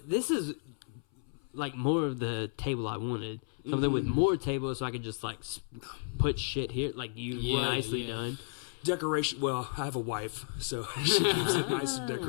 This is like more of the table I wanted. Something with more tables, so I could just like put shit here, like you nicely done. Decoration. Well, I have a wife, so she keeps it nice and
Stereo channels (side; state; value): right; silent; 56 dB below the other